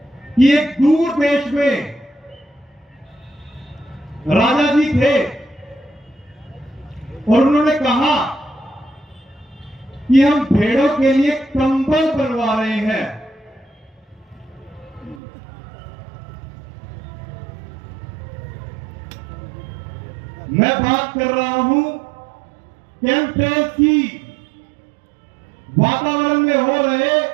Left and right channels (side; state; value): left; drops out; at 15.2 s